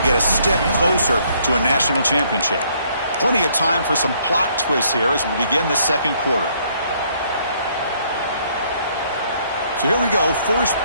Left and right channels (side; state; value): both; inverted; correlation -0.66